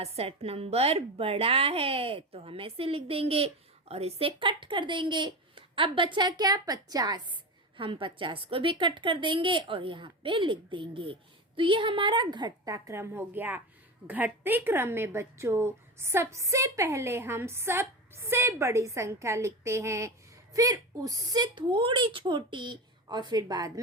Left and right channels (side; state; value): both; normal; correlation 0.23